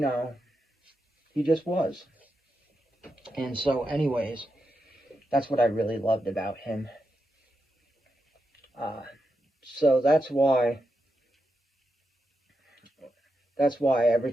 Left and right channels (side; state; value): both; normal; correlation 0.86